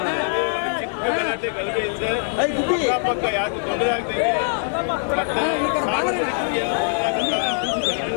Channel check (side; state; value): right; silent; 64 dB below the other